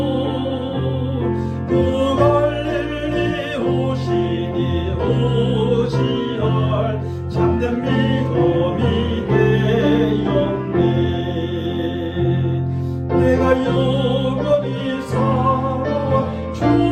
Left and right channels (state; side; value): identical; both; correlation 1.00